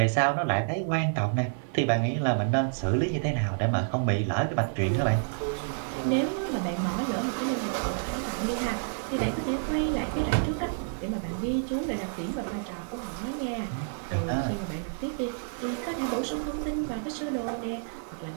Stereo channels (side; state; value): left; silent; digital silence